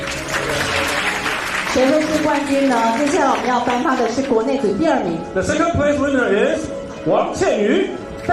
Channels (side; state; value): both; identical; correlation 1.00